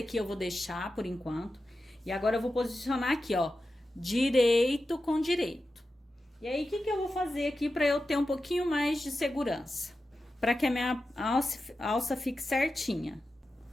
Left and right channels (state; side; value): normal; both; correlation 0.92